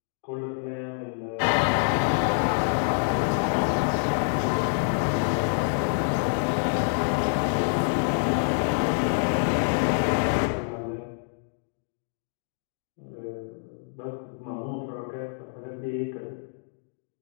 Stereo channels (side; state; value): right; silent; digital silence